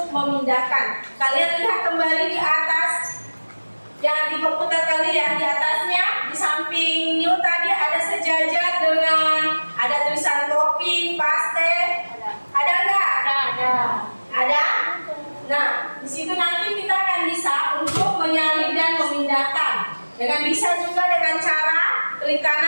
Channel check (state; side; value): inverted; both; correlation -1.00